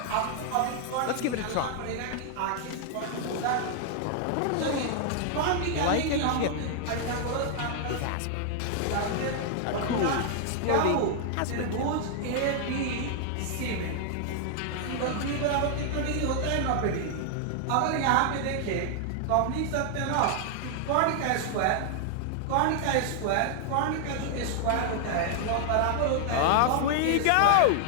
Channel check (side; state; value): both; different; correlation 0.00